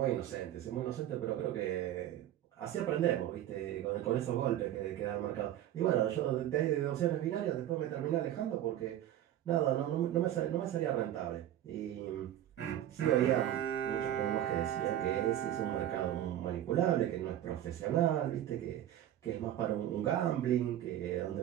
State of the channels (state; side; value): quieter; left; 12.1 dB